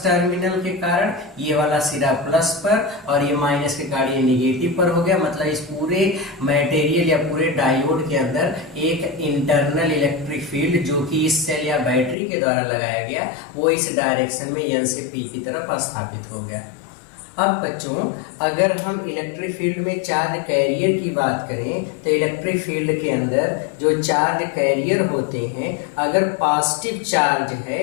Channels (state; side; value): drops out; right; at 12.2 s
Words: टर्मिनल के कारण ये वाला सिरा प्लस पर और ये माइनस के कारण ये निगेटिव पर हो गया। मतलब इस पूरे मटेरियल या पूरे डायोड के अंदर एक इंटरनल इलेक्ट्रिक फील्ड जो कि इस सेल या बैटरी के द्वारा लगाया गया वो इस डायरेक्शन में N से P की तरफ स्थापित हो गया। अब बच्चों अगर हम इलेक्ट्रिक फील्ड में चार्ज कैरियर की बात करें तो इलेक्ट्रिक फील्ड के अंदर जो चार्ज कैरियर होते हैं अगर पॉजिटिव चार्ज है